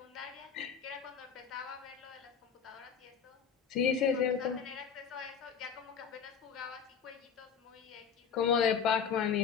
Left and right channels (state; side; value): quieter; right; 7.0 dB